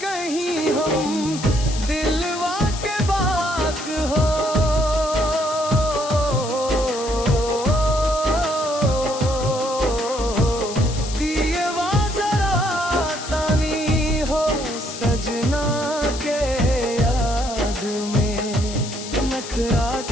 कहीं हम दिलवा के बात हो दिएवा जरा तानी हो सजना के याद में नखरा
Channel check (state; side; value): noise; left; hiss, 10 dB below the sound